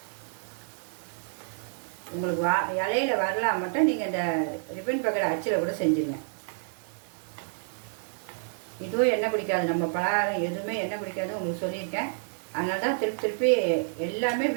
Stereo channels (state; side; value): silent; left; digital silence